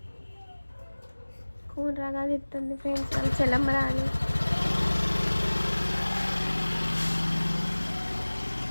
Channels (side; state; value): both; inverted; correlation -1.00